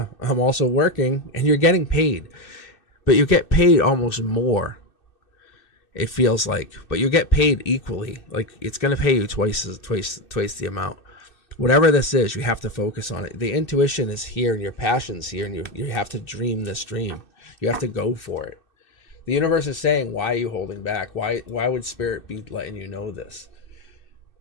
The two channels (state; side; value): late; right; 2.6 ms